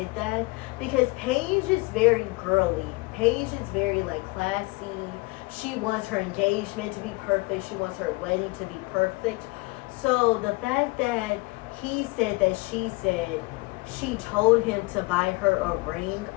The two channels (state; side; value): quieter; right; 25.0 dB